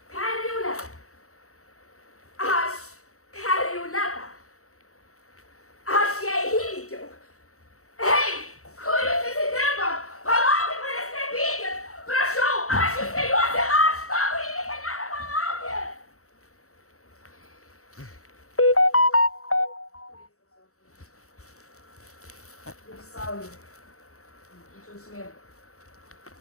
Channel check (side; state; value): right; late; 0.64 ms